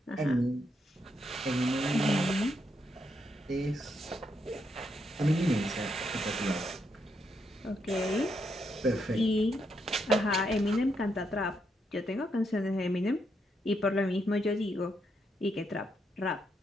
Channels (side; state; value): both; normal; correlation 0.79